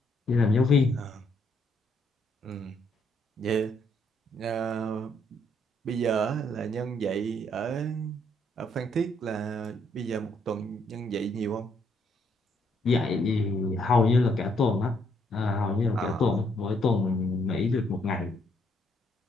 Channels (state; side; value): normal; both; correlation 0.71